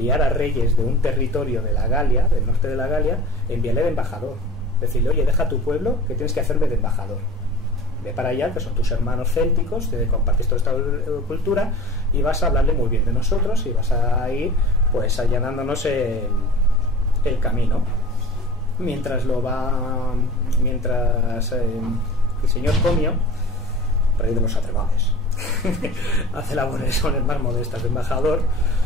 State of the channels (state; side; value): normal; both; correlation 0.40